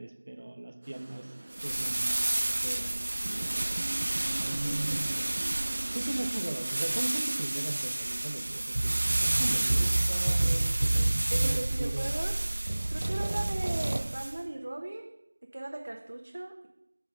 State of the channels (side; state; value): both; inverted; correlation -1.00